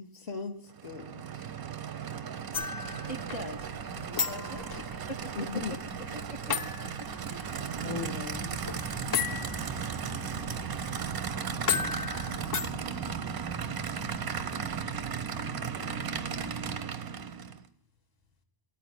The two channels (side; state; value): left; late; 1.0 ms